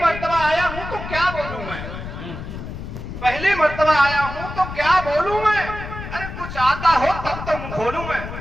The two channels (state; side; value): noise; left; rumble, 9 dB below the sound